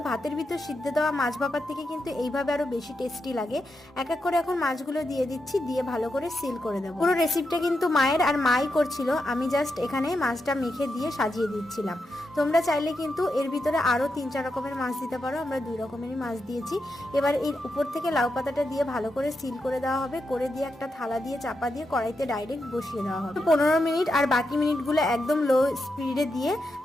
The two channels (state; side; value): normal; both; correlation 0.85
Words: ভাতের ভিতর সিদ্ধ দেওয়া মাছ ভাপার থেকে কিন্তু এইভাবে আরো বেশি টেস্টি লাগে। এক এক করে এখন মাছগুলো দিয়ে দিচ্ছি, দিয়ে ভালো করে সিল করে দেবো। পুরো রেসিপিটা কিন্তু মায়ের আর মাই করছিল, আমি জাস্ট এখানে মাছটা মেখে দিয়ে সাজিয়ে দিচ্ছিলাম। তোমরা চাইলে কিন্তু এর ভিতরে আরো 3-4 রকমের মাছ দিতে পারো, আমরা 2 রকমেরই মাছ দিয়েছি। এবার এর উপর থেকে লাউ পাতাটা দিয়ে ভালো করে সিল করে দেওয়া হবে, করে দিয়ে একটা থালা দিয়ে চাপা দিয়ে কড়াইতে ডাইরেক্ট বসিয়ে দেওয়া হবে। 15 মিনিট আর বাকি মিনিটগুলো একদম লো স্পিডে দিয়ে